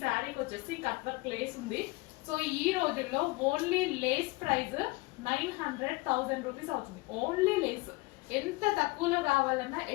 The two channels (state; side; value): quieter; right; 23.5 dB